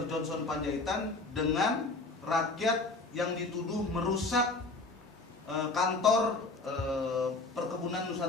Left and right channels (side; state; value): right; quieter; 3.4 dB